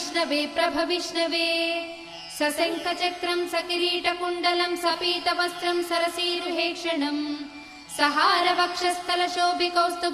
प्रभविष्णवे सशङ्खचक्रं सकिरीटकुण्डलं सपीतवस्त्रं सरसीरुहेक्षणम्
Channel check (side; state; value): both; identical; correlation 1.00